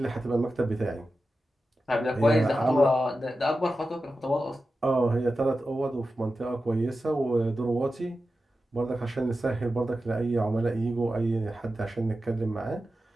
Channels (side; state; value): both; normal; correlation 0.92